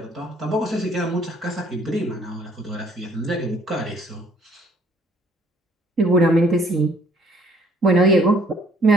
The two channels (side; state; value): both; normal; correlation 0.61